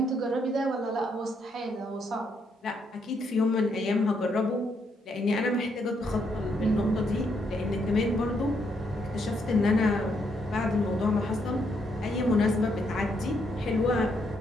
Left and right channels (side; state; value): both; normal; correlation 0.75